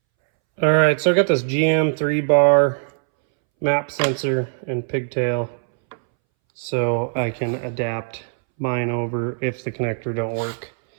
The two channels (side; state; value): left; silent; 64 dB below the other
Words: All right, so I got this GM 3-bar map sensor and pigtail so I can adapt mine over if the connector don't work.